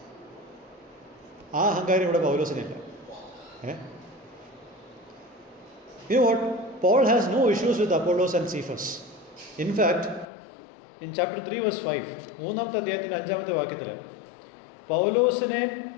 ആ അഹങ്കാരം ഇവിടെ പൗലോസിനില്ല. You know what? Paul has no issues with Apollos and Cephas. In fact, in chapter 3 verse 5, മൂന്നാമത്തെ അധ്യായത്തിൻ്റെ 5-ാമത്തെ വാക്യത്തിൽ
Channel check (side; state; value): right; drops out; at 10.2 s